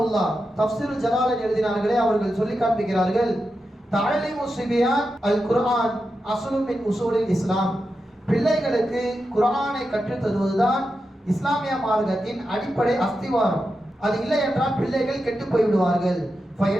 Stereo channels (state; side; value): normal; both; correlation 0.89